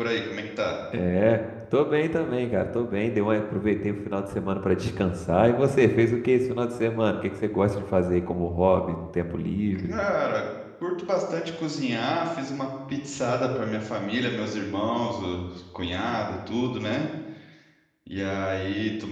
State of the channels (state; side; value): identical; both; correlation 1.00